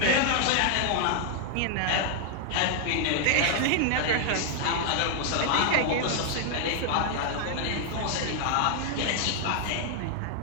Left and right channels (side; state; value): both; different; correlation 0.00